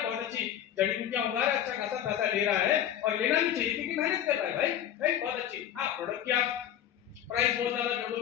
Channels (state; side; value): quieter; right; 10.5 dB